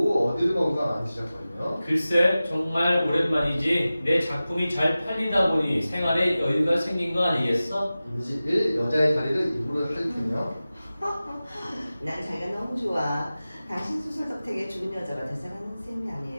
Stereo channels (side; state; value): both; inverted; correlation -0.96